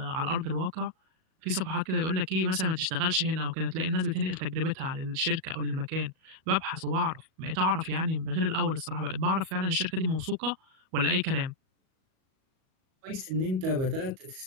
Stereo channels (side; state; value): left; late; 37 ms